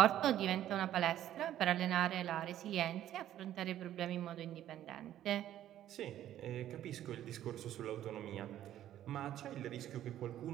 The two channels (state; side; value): quieter; left; 12.1 dB